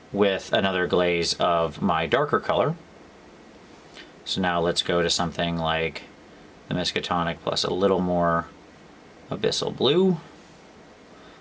with another glaze of my darker color. So now let's go to something like the Miskatonic plus a little more Abyssal Blue.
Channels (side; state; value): both; identical; correlation 1.00